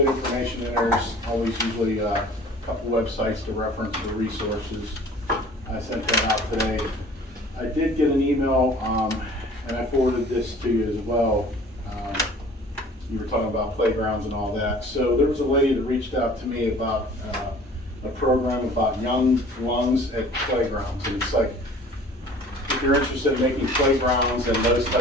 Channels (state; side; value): normal; both; correlation 0.48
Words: information in there. There's always usually a couple websites to reference for resources. I sent that out today. I did get an email, and I forwarded this to you as well. You were talking about playgrounds and all that. So there was a lady that reached out to me about a program about young lungs at playgrounds. And it's like, if you're interested in making playgrounds and those